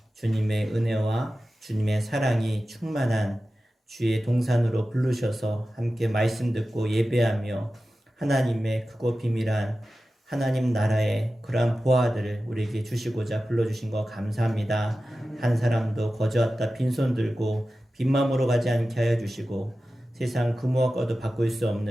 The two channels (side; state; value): both; normal; correlation 0.94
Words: 주님의 은혜와 주님의 사랑이 충만한 주의 동산으로 부르셔서 함께 말씀 듣고 예배하며 하나님의 크고 비밀한 하나님 나라의 그러한 보화들을 우리에게 주시고자 불러주신 거 감사합니다. 한 사람도 거저왔다 빈손 들고 빈마음으로 가지 않게 하여 주시고 세상 그 무엇과도 바꿀 수